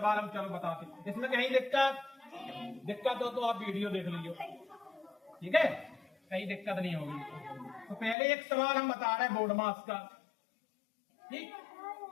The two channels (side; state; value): right; drops out; at 8.2 s